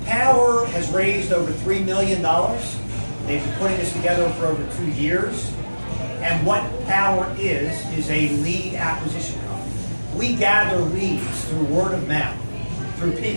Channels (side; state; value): both; inverted; correlation -1.00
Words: Powur has raised over $3 million. They've been putting this together for over 2 years. And what Powur is a lead acquisition company. We gather leads through word of mouth, through